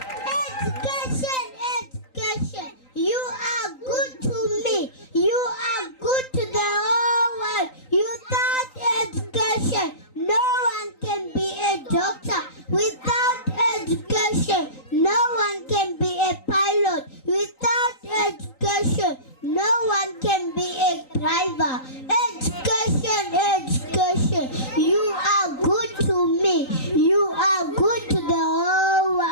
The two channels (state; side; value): late; right; 3.9 ms